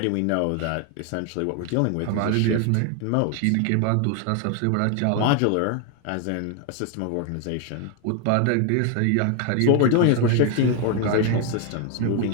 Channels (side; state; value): both; different; correlation 0.01